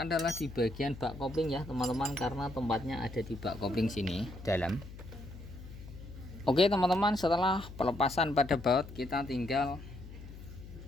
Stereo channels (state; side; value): noise; left; hum, 14 dB below the sound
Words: adalah di bagian bak kopling ya teman-teman, karena tempatnya ada di bak kopling sini dalam. Oke teman-teman, setelah pelepasan pada baut, kita tinggal